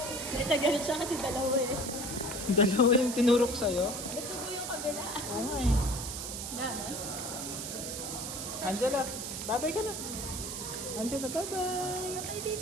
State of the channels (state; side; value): noise; right; hiss, 6 dB below the sound